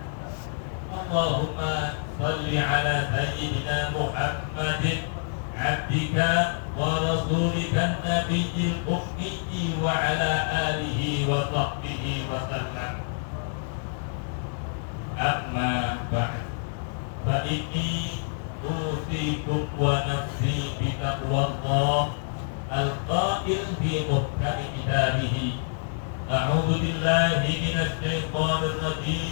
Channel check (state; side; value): silent; right; digital silence